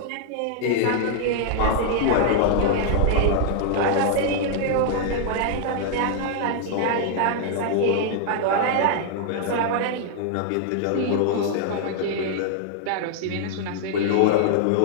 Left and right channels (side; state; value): both; different; correlation -0.01